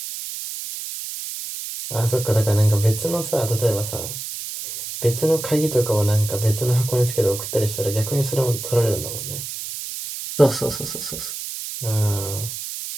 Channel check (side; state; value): right; noise; hiss, 7 dB below the sound